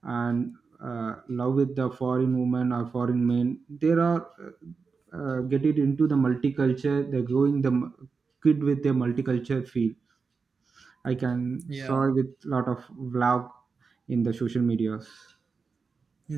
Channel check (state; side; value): quieter; left; 4.9 dB